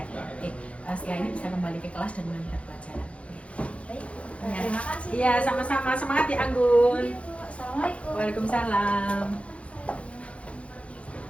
Oke. Setelah ini bisa kembali ke kelas dan melanjutkan pelajaran. Baik. Terima kasih. Iya, sama-sama. Semangat ya Anggun. Assalamualaikum. Waalaikumsalam.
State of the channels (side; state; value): right; late; 0.062 ms